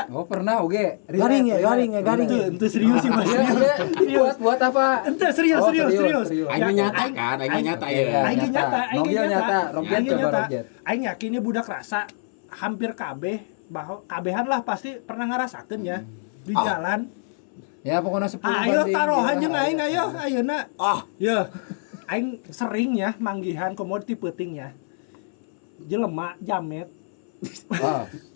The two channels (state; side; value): silent; right; 63 dB below the other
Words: Oh, pernah oge. Garing ya. Ente serius sih mas. Buat apa? Ente serius. Aing nyata kan, aing nyata ya. Aing nyata. Roget coba roget. Aing yakin budak rasa hampir kabeh bahwa kabehan lah pasti pernah ngarasakeun ya di jalan. Ya pokoknya 10 Ayo taruhan jeung aing ayeuna. Ya. Aing sering ya manggihan komoditi peuting ya. Jelema jamet.